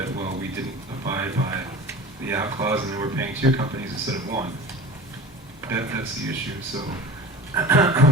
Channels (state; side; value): normal; both; correlation 0.36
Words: well, we didn't abide by the out clause and then we're paying 2 companies instead of 1. That's the issue. So